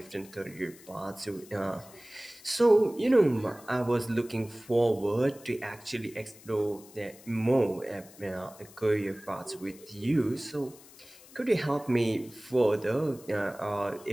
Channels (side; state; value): left; noise; hiss, 22 dB below the sound